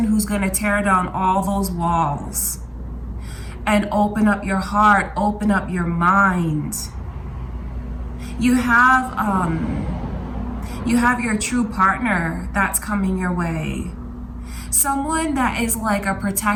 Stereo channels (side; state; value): both; identical; correlation 1.00